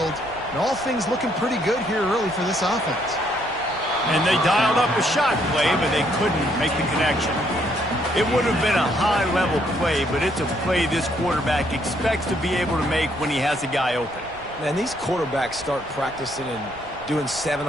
And all things looking pretty good here early for this offense. And they dialed up a shot play, but they couldn't make the connection. It would have been a high-level play, but it's a play this quarterback expects to be able to make when he has a guy open. Man, these quarterbacks start practicing and doing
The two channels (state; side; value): noise; right; rumble, 20 dB below the sound